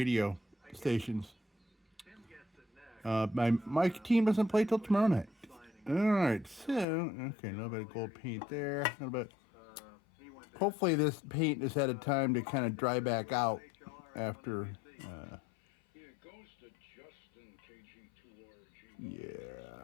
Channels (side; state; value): right; drops out; at 6.9 s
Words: stations. My team doesn't play till tomorrow night. All right, so, okay, a little bit of gold paint there. A little bit. Hopefully this paint has had a time to kind of dry back out after.